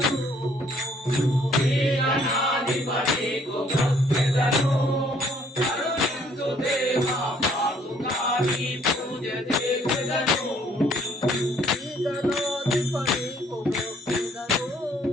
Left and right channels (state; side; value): normal; both; correlation 0.63